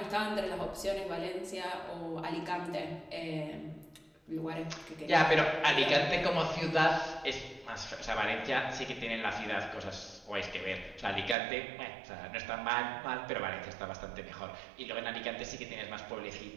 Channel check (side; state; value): left; drops out; at 11.4 s